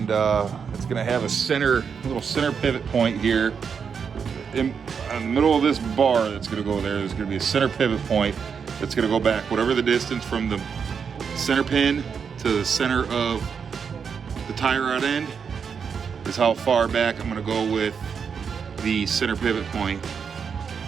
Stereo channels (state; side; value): quieter; left; 6.4 dB